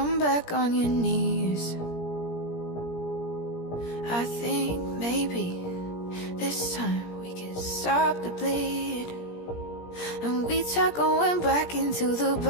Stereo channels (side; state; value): right; late; 17 ms